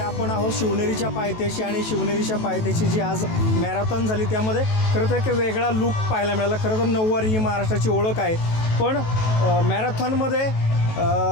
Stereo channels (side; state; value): right; late; 18 ms